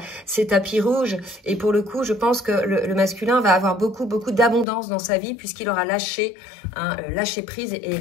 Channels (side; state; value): right; drops out; at 4.7 s